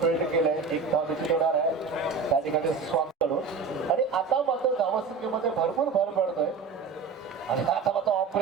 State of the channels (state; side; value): quieter; left; 5.1 dB